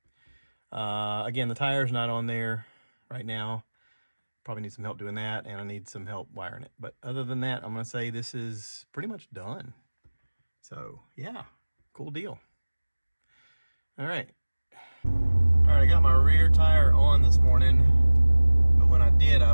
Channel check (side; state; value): both; inverted; correlation -1.00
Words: again, the tire's not on there right now. Probably need some help doing that, and I need some help wiring it. But other than that, I'm gonna say this is pretty much done. So yeah, cool deal. All right, I got my rear tire on this morning, but when I did, I